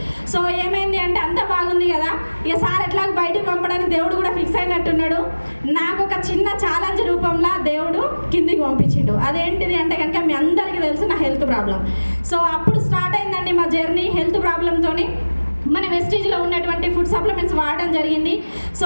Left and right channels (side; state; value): both; inverted; correlation -1.00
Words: సో ఏమైంది అంటే అంత బాగుంది కదా, ఇక సార్ ఎట్లా బయటకు పంపడానికి దేవుడు కూడా ఫిక్స్ అయినట్టున్నాడు. నాకు ఒక చిన్న ఛాలెంజ్ రూపంలో దేవుడు కిందికి పంపించిండు. అదేంటిది అంటే కనుక మీ అందరికీ తెలుసు, నా హెల్త్ ప్రాబ్లం. సో అప్పుడు స్టార్ట్ అయిందండి మా జర్నీ హెల్త్ ప్రాబ్లంతోని. మన వెస్టీజ్లో ఉన్నటువంటి ఫుడ్ సప్లిమెంట్స్ వాడడం జరిగింది. సో